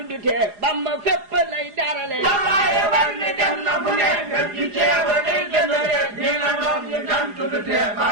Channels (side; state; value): left; late; 4.9 ms